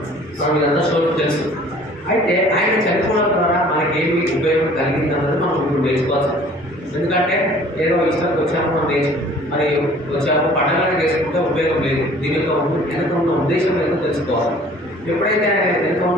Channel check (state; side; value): normal; both; correlation 0.51